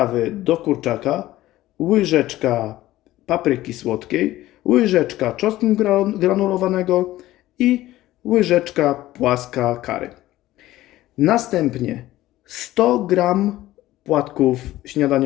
do kurczaka, łyżeczka papryki słodkiej, łyżeczka czosnku granulowanego i łyżeczka płaska curry. Następnie 100 g płatków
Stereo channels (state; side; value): quieter; right; 15.7 dB